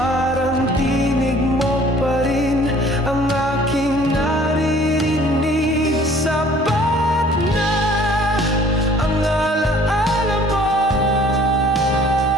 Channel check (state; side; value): normal; both; correlation 0.54